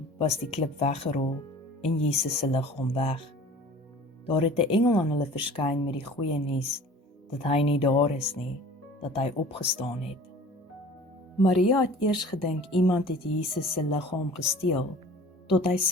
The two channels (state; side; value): normal; both; correlation 0.45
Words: was die klip weggerol en Jesus se liggaam weg. Daar het 'n engel aan hulle verskyn met die goeie nuus, dat hy nie daar is nie, dat hy opgestaan het. Maria het eers gedink iemand het Jesus se liggaam gesteel, tot hy